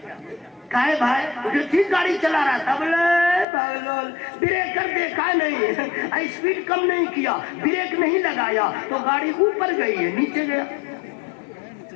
کہے بھائی جو ٹھیک گاڑی چلا رہا تھا, بولے بریکر دیکھا نہیں, اسپیڈ کم نہیں کیا, بریک نہیں لگایا تو گاڑی اوپر گئی ہے نیچے گیا.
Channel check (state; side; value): drops out; right; at 3.5 s